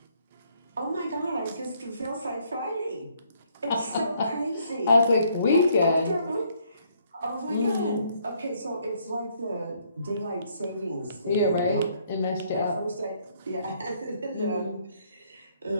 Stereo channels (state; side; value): inverted; both; correlation -0.67